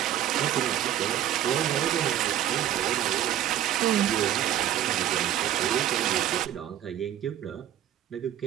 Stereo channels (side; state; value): left; quieter; 11.6 dB